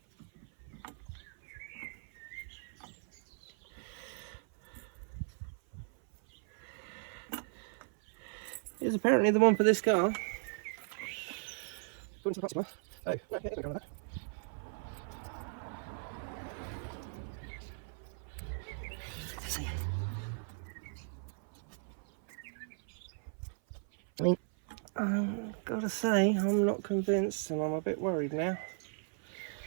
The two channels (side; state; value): left; silent; 53 dB below the other